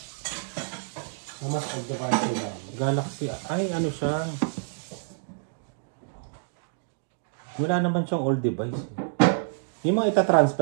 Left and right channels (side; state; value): left; silent; digital silence